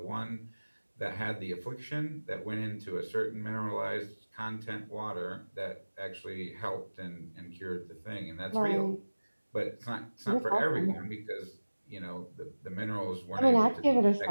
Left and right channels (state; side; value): inverted; both; correlation -1.00